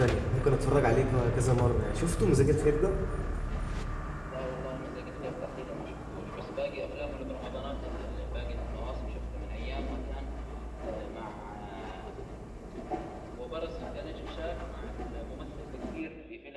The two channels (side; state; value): both; identical; correlation 1.00